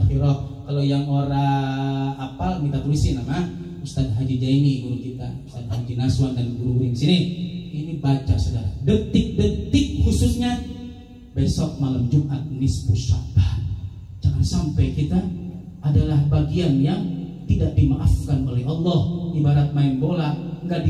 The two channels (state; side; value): identical; both; correlation 1.00